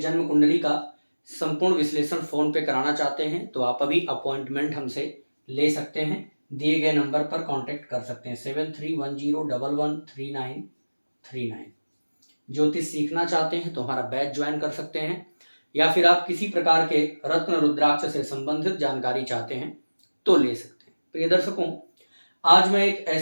कुंडली का संपूर्ण विश्लेषण फ़ोन पे कराना चाहते हैं तो आप अभी अपॉइंटमेंट हमसे ले सकते हैं। दिए गए नंबर पर कांटेक्ट कर सकते हैं 7310113939। ज्योतिष सीखना चाहते हैं तो हमारा बैच ज्वाइन कर सकते हैं, या फिर आप किसी प्रकार के रत्न रुद्राक्ष से संबंधित जानकारी चाहते हैं तो ले सकते हैं। प्रिय दर्शकों, आज मैं एक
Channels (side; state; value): both; inverted; correlation -1.00